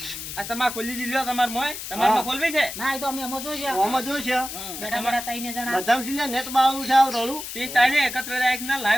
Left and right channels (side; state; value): left; noise; hiss, 8 dB below the sound